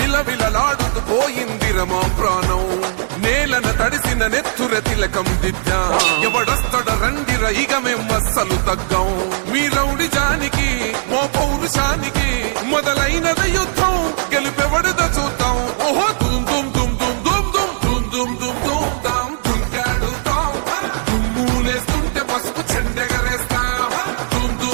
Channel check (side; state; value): left; silent; 67 dB below the other